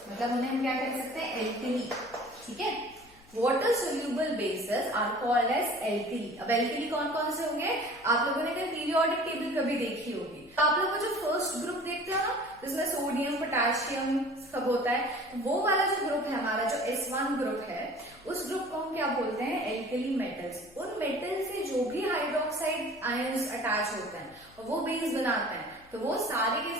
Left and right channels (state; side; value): noise; left; hum, 27 dB below the sound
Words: मतलब उन्हें हम क्या कह सकते हैं, एल्कली। ठीक है, water soluble bases are called as alkali. अब एल्कली कौन कौन से होंगे, आप लोगों ने अगर पीरियोडिक टेबल कभी देखी होगी तो आप लोगों को जो फर्स्ट ग्रुप देखते हो ना जिसमें सोडियम पोटेशियम सब होता है, वो वाला जो ग्रुप है हमारा जो S1 ग्रुप है, उस ग्रुप को हम क्या बोलते हैं, एल्कली मेटल्स। उन मेटल से जो भी हाइड्रोक्साइड आयंस अटैच होते हैं और वो बेस बनाते हैं तो वो सारे के